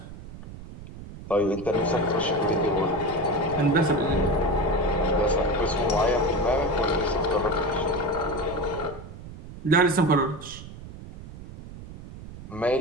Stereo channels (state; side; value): noise; right; rumble, 14 dB below the sound